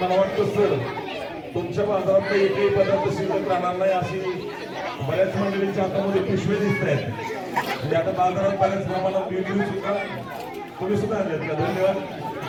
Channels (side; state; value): both; identical; correlation 1.00